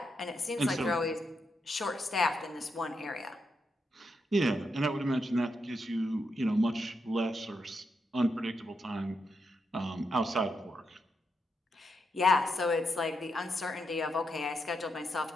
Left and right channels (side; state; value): both; normal; correlation 0.83